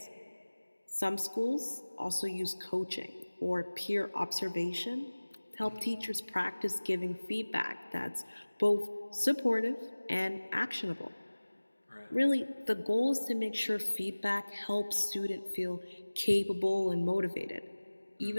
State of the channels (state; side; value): inverted; both; correlation -1.00